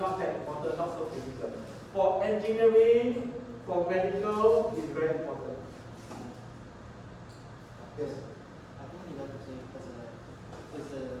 that important, not so critical. For engineering, for medical, it's very important. Yes. I think you have to say it's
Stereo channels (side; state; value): both; identical; correlation 1.00